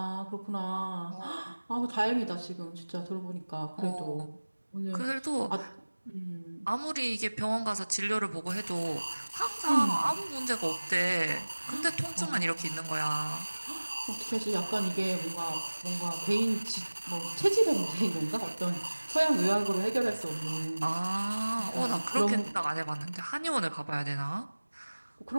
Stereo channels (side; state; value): both; inverted; correlation -1.00